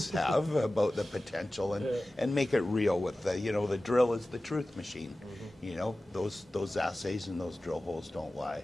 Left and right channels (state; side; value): normal; both; correlation 0.96